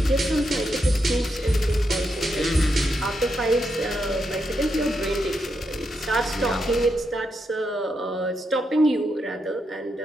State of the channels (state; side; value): normal; both; correlation 0.83